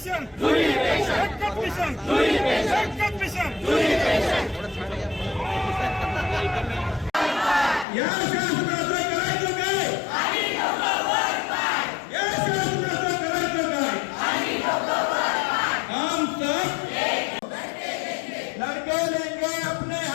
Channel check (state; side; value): drops out; right; at 7.9 s